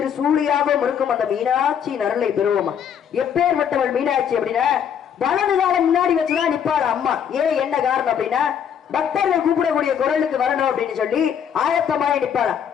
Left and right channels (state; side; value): quieter; right; 8.4 dB